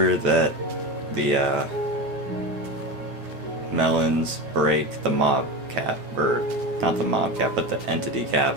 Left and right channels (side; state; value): left; late; 9.1 ms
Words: that the melons break the mob cap, or not the mob cap, but the entity cap,